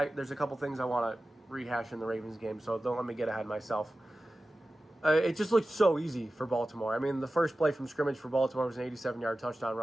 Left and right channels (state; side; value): normal; both; correlation 0.95